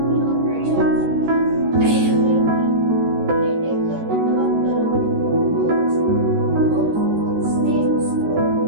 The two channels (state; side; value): late; left; 13 ms